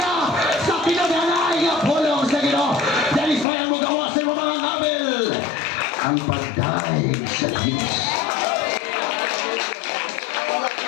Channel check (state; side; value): drops out; right; at 3.5 s